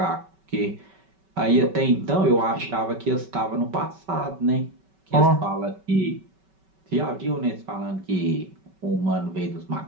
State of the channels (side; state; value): left; late; 5.2 ms